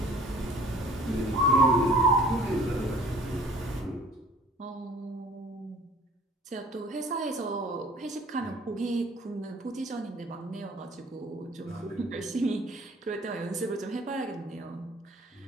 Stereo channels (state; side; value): normal; both; correlation 0.51